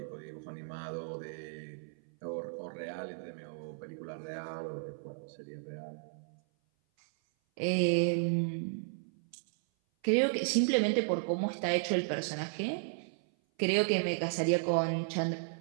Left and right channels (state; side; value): silent; left; 55 dB below the other